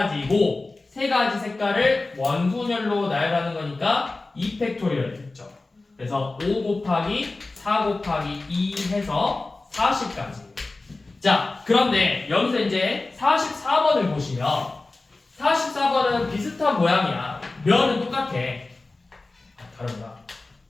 3가지 색깔을 원순열로 나열하는 거니까 2팩토리얼 됐죠. 그래서 5 곱하기 4 곱하기 2 해서 40까지. 자, 그런데 여기서 이제 44번을 보시면 44번은 비슷한 모양이야. 면은 똑같아. 다른가?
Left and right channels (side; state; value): right; quieter; 3.3 dB